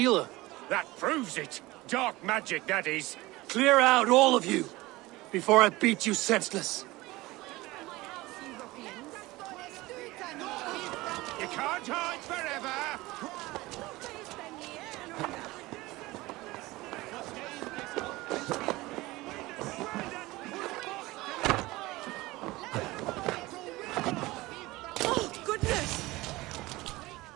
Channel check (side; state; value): left; quieter; 20.0 dB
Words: That proves it. Dark magic, that is. Clear out, all of you, before I beat you senseless. You can't hide forever.